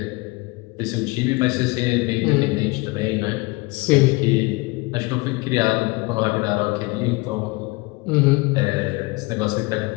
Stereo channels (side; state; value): right; quieter; 24.6 dB